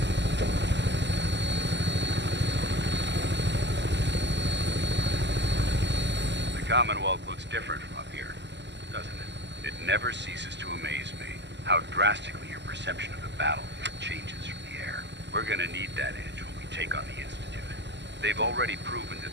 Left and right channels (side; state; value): left; late; 0.51 ms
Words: The Commonwealth looks different from up here, doesn't it? It never ceases to amaze me how drastically your perception of the battlefield changes from the air. We're gonna need that edge when we take on the Institute. They've already proven that